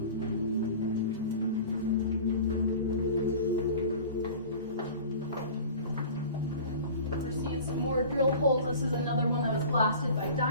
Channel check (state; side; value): inverted; both; correlation -0.40